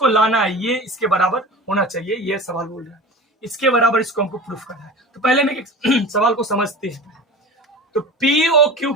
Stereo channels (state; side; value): normal; both; correlation 0.35